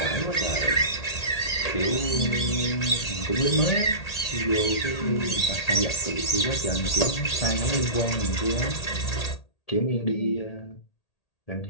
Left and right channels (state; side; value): late; right; 1.8 ms